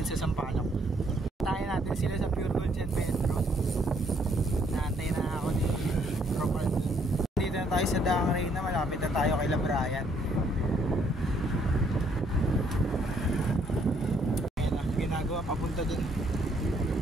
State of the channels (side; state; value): both; normal; correlation 0.68